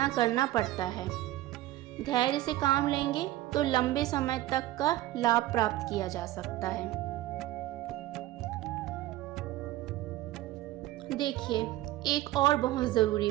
करना पड़ता है। धैर्य से काम लेंगे तो लंबे समय तक का लाभ प्राप्त किया जा सकता है। देखिए, एक और बहुत ज़रूरी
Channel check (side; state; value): left; quieter; 15.8 dB